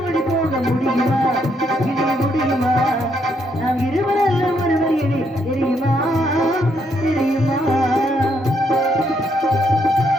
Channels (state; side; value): normal; both; correlation 0.74